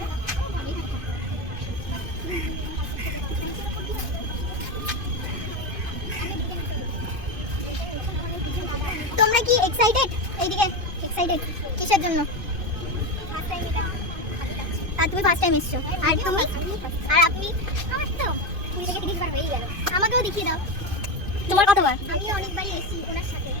তোমরা কি এক্সাইটেড? এইদিকে এক্সাইটেড কিসের জন্য? আর তুমি ফার্স্ট টাইম এসছো, আর তুমি আর আপনি? আমার তো তুমি থেকে 30 বার হয়ে গেল। আমাকেও দেখিয়ে দাও তোমার কতবার। আমি অনেকবারই এসেছি ওনার সাথে,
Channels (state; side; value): late; left; 2.5 ms